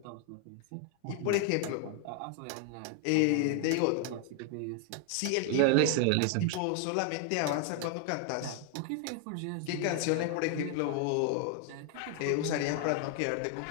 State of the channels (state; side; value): different; both; correlation 0.00